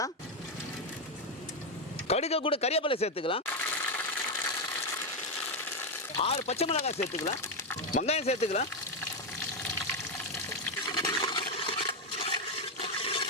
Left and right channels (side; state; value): both; normal; correlation 0.06